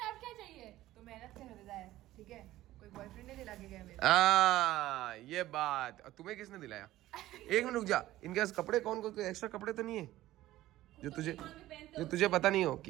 आप क्या चाहिए? तो मेहनत से खरीदा है, ठीक है? कोई बॉयफ्रेंड नहीं दिला के गया मेरे। ये बात, और तुम्हें किसने दिलाया? एक मिनट रुक जा, इनके पास कपड़े कौन कौन, एक्स्ट्रा कपड़े तो नहीं है जो तुझे पता नहीं हो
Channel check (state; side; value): quieter; left; 15.4 dB